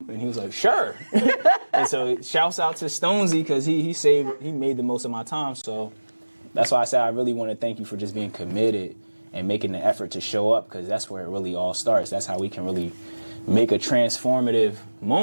And he was like, sure. And so shouts out to Stonesy, because he made the most of my time. So that's why I said I really want to thank you for just being committed and making the effort to show up, because that's where it really all starts. That's how we can really make a transformative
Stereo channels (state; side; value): inverted; both; correlation -1.00